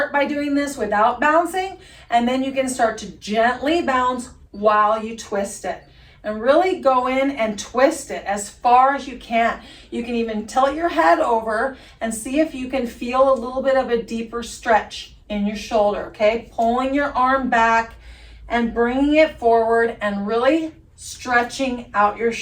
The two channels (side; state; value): both; identical; correlation 1.00